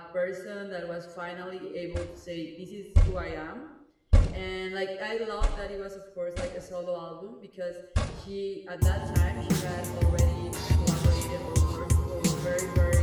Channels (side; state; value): both; identical; correlation 1.00